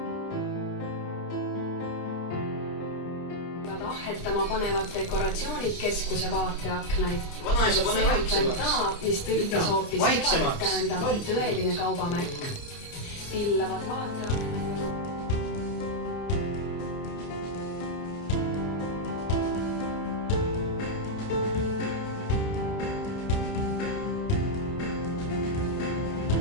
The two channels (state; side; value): late; right; 29 ms